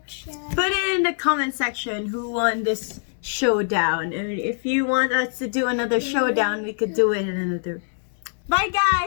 Put it in the comment section who won this showdown. And if you want us to do another showdown, we could do it in another. Bye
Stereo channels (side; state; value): right; silent; digital silence